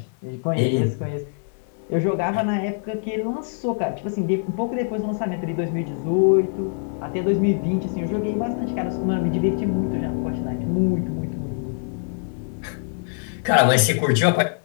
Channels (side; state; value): right; silent; digital silence